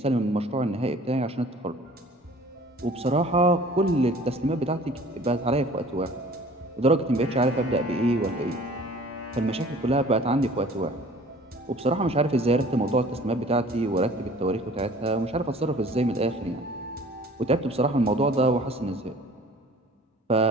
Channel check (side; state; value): both; normal; correlation 0.48